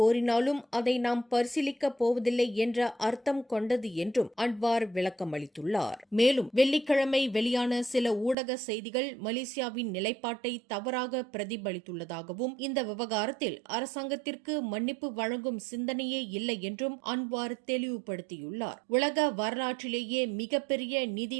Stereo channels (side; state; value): left; drops out; at 8.3 s